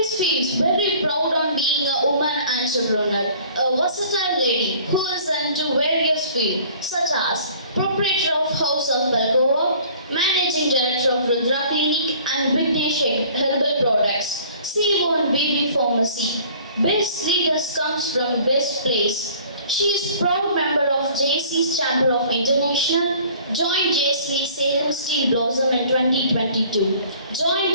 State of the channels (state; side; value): inverted; both; correlation -0.51